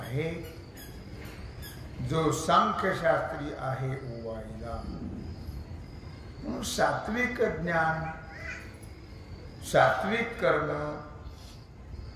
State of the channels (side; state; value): both; identical; correlation 1.00